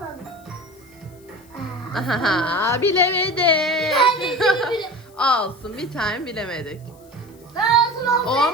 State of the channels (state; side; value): noise; left; hiss, 29 dB below the sound